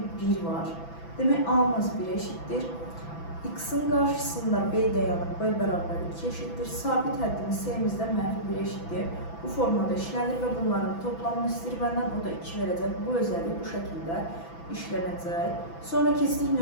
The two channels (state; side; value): late; right; 6.0 ms